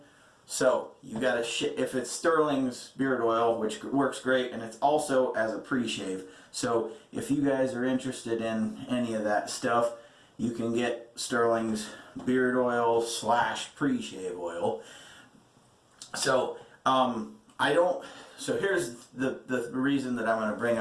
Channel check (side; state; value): both; identical; correlation 1.00